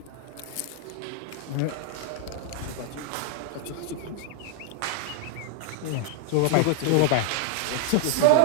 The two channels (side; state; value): both; different; correlation 0.00